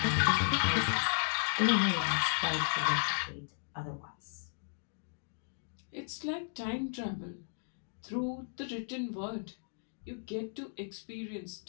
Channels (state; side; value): silent; right; digital silence